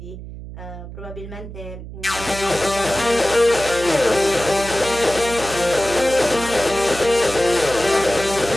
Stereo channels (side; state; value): right; noise; hum, 12 dB below the sound